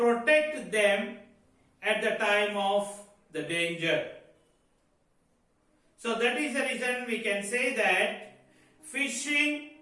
them at the time of the danger. So that is the reason we can say that fishing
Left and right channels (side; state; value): both; identical; correlation 1.00